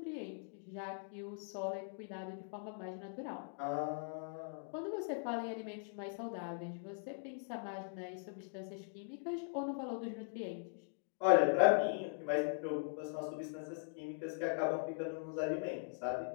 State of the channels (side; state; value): right; silent; digital silence